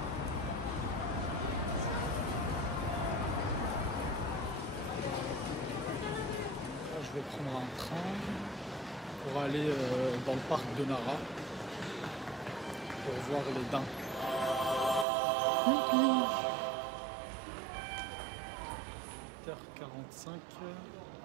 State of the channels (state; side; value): drops out; left; at 15.1 s